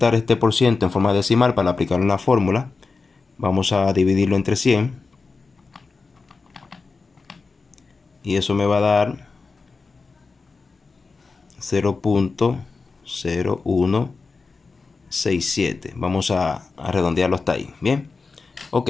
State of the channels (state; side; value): quieter; right; 4.3 dB